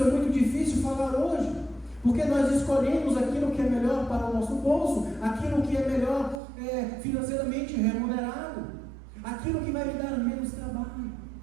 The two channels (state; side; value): drops out; left; at 6.4 s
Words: é muito difícil falar hoje, porque nós escolhemos aquilo que é melhor para o nosso bolso, aquilo que é melhor financeiramente remunerado, aquilo que vai me dar menos trabalho.